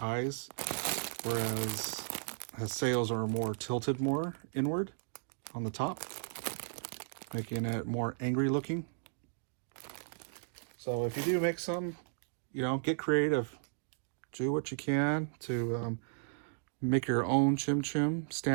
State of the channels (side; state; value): left; silent; digital silence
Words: eyes, whereas Haseo's are more tilted more inward on the top, making it more angry looking. So if you do make some, get creative. Do what you can to make your own ChimChim